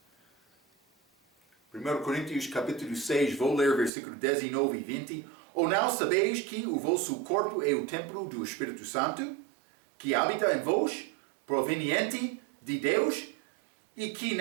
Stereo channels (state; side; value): drops out; left; at 3.9 s